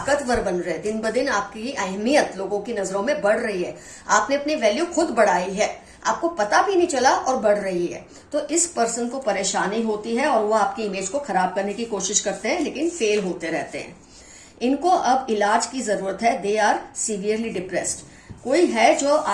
बन रहे हैं, दिन ब दिन आपकी अहमियत लोगों की नजरों में बढ़ रही है। आपने अपनी वैल्यू खुद बढ़ाई है, आपको पता भी नहीं चला और बढ़ रही है। तो इस पर्सन को परेशानी होती है और वो आपकी इमेज को खराब करने की कोशिश करते हैं, लेकिन फेल होते रहते हैं। इनको अब इलाज की जरूरत है। दे आर सीवियरली डिप्रेस्ड, कोई है जो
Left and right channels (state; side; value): identical; both; correlation 1.00